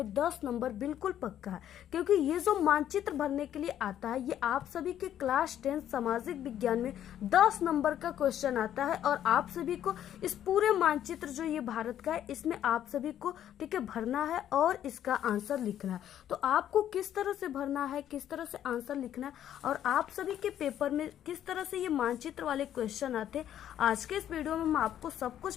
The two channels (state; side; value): quieter; right; 10.8 dB